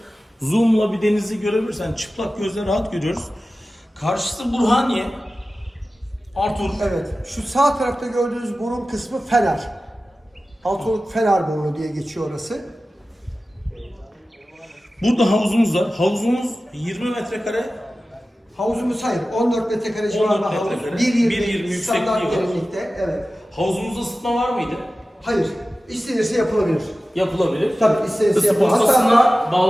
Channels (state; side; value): normal; both; correlation 0.95